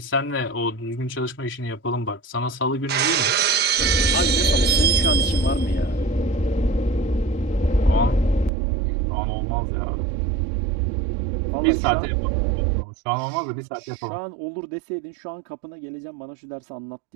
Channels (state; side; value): drops out; left; at 8.5 s